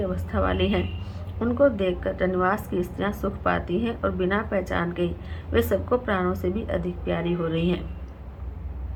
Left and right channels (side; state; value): both; identical; correlation 1.00